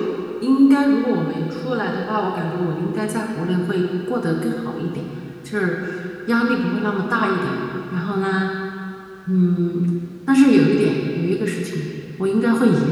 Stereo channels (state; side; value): identical; both; correlation 1.00